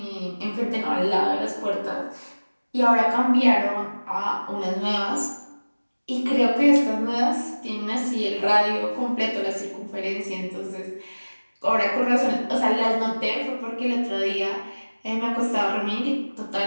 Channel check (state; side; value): inverted; both; correlation -1.00